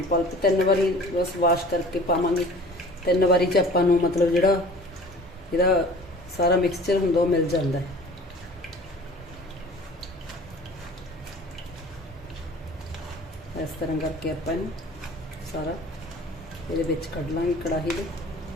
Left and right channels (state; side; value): normal; both; correlation 0.45